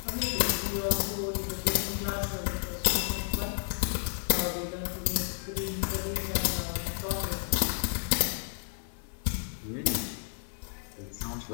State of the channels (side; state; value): right; silent; digital silence